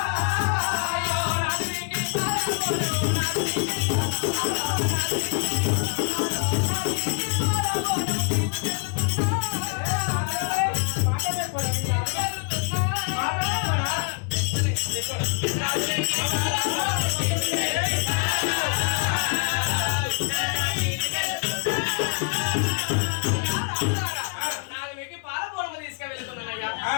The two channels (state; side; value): quieter; right; 37.4 dB